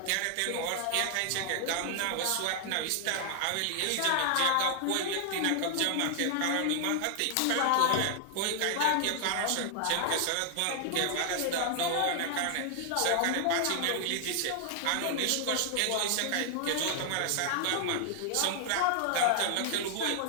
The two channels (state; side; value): different; both; correlation 0.00